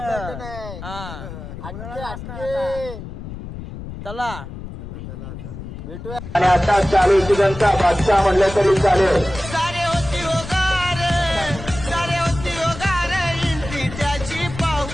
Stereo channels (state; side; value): noise; left; rumble, 11 dB below the sound